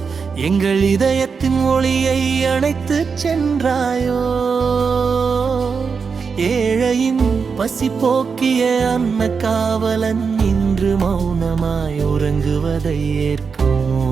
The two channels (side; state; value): left; quieter; 5.5 dB